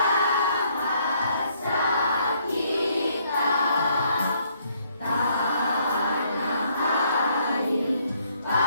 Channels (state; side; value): inverted; both; correlation -0.68